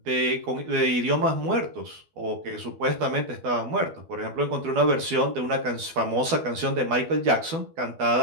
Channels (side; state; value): left; late; 12 ms